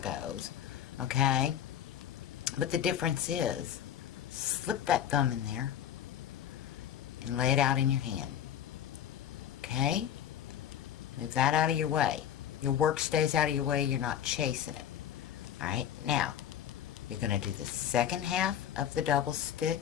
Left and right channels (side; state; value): right; quieter; 10.0 dB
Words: Okay? But the difference is, slip that thumb in there and lay it out in your hand. Okay? Move that out of your way. Your work stays out of your way. You're not chasing it. Alright? Now, you're going to do the second half of the double